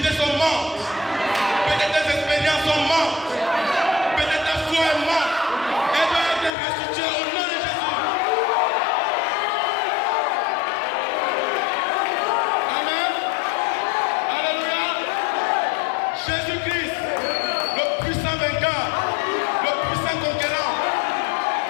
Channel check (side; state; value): right; drops out; at 6.5 s